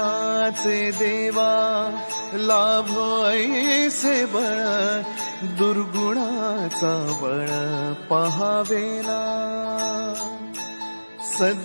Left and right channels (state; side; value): inverted; both; correlation -1.00